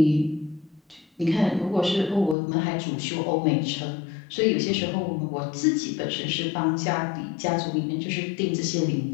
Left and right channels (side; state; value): right; drops out; at 2.4 s